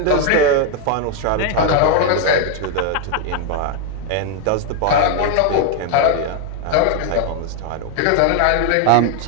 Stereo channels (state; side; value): different; both; correlation 0.00